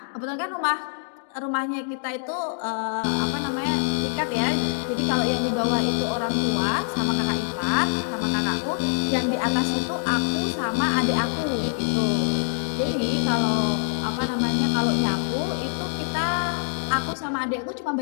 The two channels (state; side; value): silent; right; digital silence